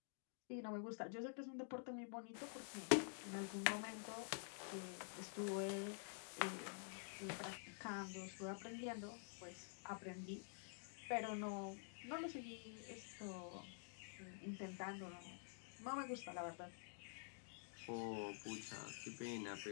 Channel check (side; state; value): right; silent; digital silence